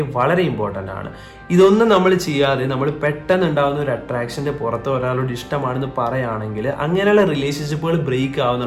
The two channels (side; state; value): both; identical; correlation 1.00